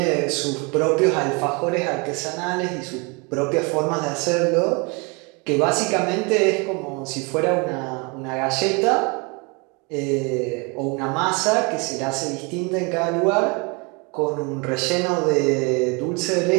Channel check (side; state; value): left; quieter; 30.7 dB